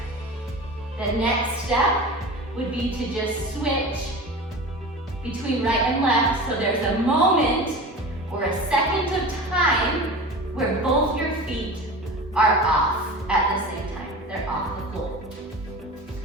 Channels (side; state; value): both; normal; correlation 0.33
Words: The next step would be to just switch between right and left. So there's a moment or a second of time where both your feet are off at the same time. They're off the floor.